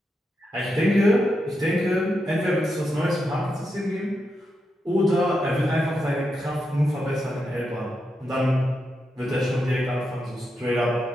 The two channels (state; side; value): normal; both; correlation 0.85